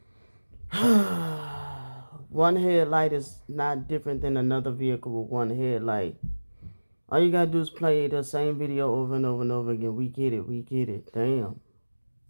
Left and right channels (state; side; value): inverted; both; correlation -1.00